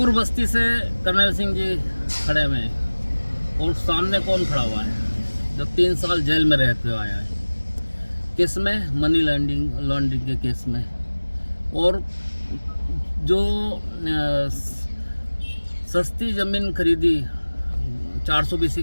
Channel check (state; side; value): inverted; both; correlation -1.00